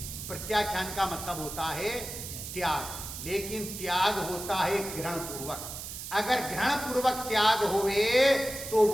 प्रत्याख्यान का मतलब होता है त्याग, लेकिन त्याग होता है ग्रहण पूर्वक। अगर ग्रहण पूर्वक त्याग होवे तो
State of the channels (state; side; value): noise; right; hiss, 9 dB below the sound